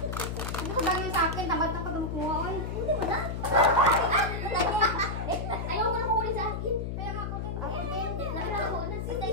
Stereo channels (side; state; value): left; noise; hum, 4 dB below the sound